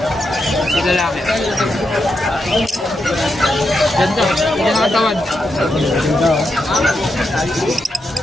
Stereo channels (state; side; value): normal; both; correlation 0.85